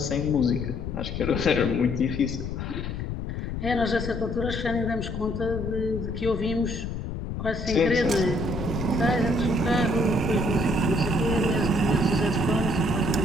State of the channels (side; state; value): left; noise; rumble, 5 dB below the sound